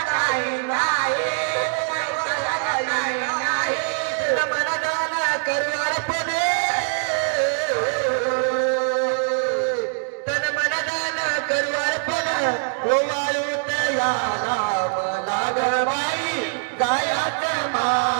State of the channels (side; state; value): left; silent; digital silence